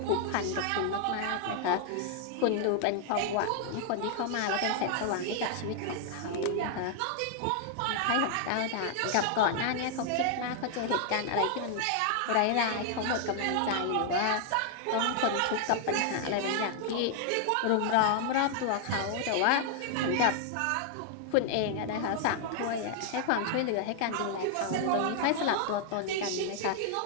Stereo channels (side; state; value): both; different; correlation 0.00